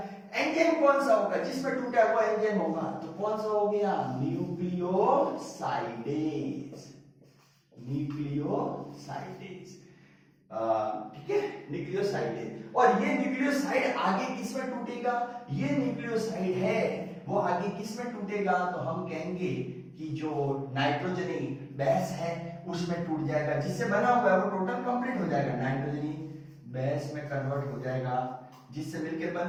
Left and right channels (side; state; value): both; identical; correlation 1.00